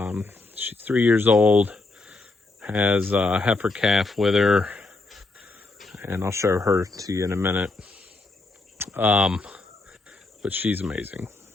She's 3 years old, has a heifer calf with her, and I'll show her to you in a minute. But she's amazing.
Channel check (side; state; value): right; quieter; 3.3 dB